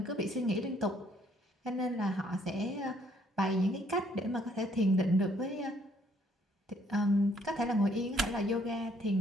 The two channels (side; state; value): both; normal; correlation 0.66